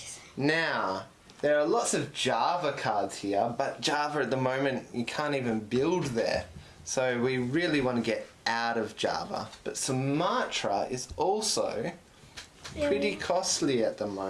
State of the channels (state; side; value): identical; both; correlation 1.00